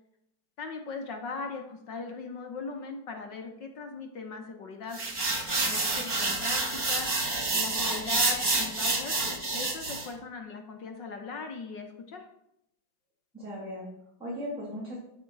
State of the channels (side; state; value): right; late; 4.4 ms